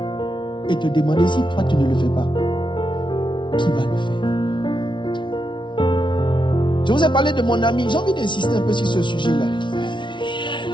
et te demander si toi tu ne le fais pas, qui va le faire? Je vous ai parlé de mon ami. J'ai envie d'insister un peu sur ce sujet-là.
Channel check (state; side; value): late; right; 0.24 ms